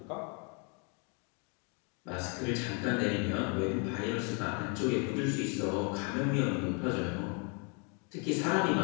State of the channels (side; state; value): right; quieter; 35.9 dB